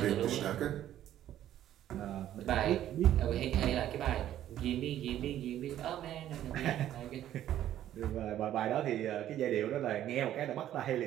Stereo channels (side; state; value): left; quieter; 12.0 dB